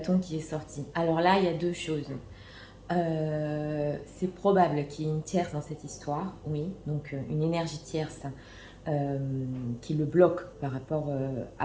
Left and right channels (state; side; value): identical; both; correlation 1.00